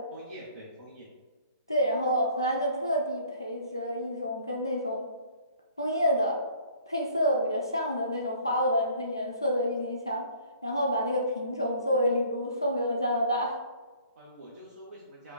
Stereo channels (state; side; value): inverted; both; correlation -0.55